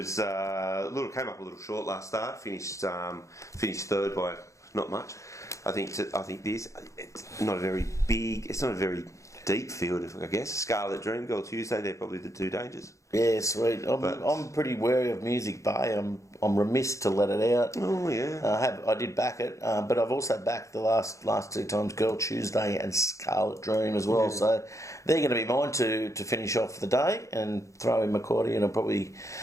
came up a little short last start. Finished third by not much. I think it's not a very big. It's not a very deep field, I guess. Scarlet Dream, Girl Tuesday. They're probably the two dangers. Yeah, sweet. I'm pretty wary of Music Bay. I'm remiss to let it out. Oh yeah. I did back it, but I've also backed the last two times Girl Tuesday and Scarlet Dream as well. Yeah. So they're going to be mine to finish off the day and throw in McCarty and probably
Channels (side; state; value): right; late; 0.15 ms